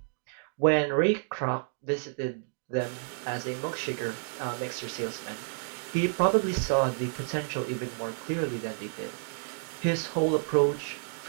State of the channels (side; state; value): left; silent; digital silence